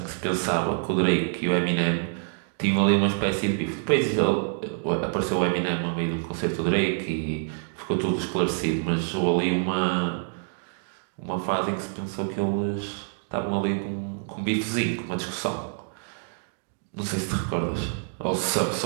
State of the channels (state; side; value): silent; left; 60 dB below the other